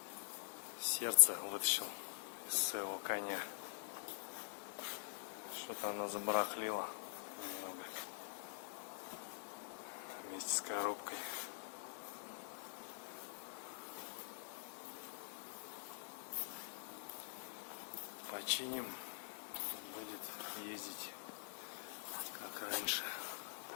Сердце вытащил из своего коня. Что-то оно забарахлило немного. Вместе с коробкой. Починим, будет ездить как раньше.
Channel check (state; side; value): silent; right; digital silence